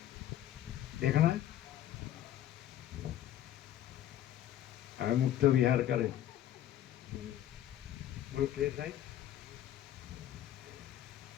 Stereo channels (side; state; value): right; quieter; 11.9 dB